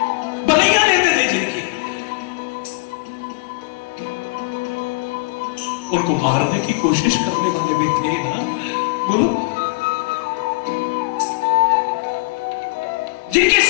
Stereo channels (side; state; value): right; quieter; 27.6 dB